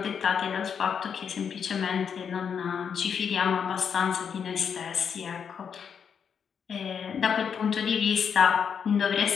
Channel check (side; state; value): right; quieter; 7.1 dB